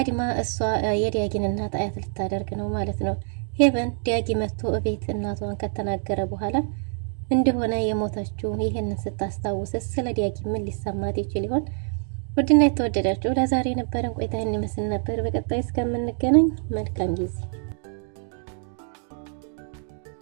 እሷ የዲያጊን እናት አያት ልታደርግ ነው ማለት ነው። ሄቨን ዲያጊ መጥቶ እቤት እናቷን ከተናገረ በኋላ እንደሆነ የሞተችው ይህንን ስታስታውስ ስለ ዲያጊ ምን ሊሰማት ይችል ይሆን? ውድና የተወደዳችሁ ለዛሬ የነበረን ቆይታ ይመስል ነበር። በቀጣይ እስከምንገናኝ መልካም ጊዜ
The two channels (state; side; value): silent; left; 58 dB below the other